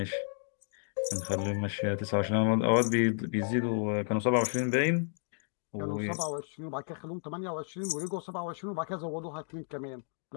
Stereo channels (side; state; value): right; silent; digital silence